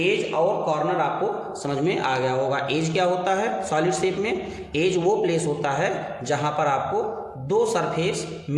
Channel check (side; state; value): both; identical; correlation 1.00